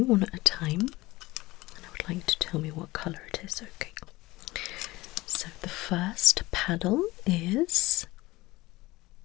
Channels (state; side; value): quieter; right; 19.8 dB